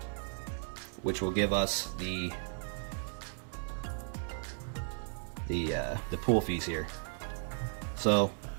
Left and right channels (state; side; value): silent; left; 54 dB below the other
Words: Which will give us the pool fees here. So